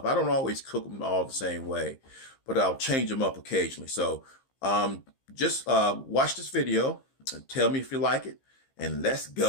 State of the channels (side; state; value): right; late; 15 ms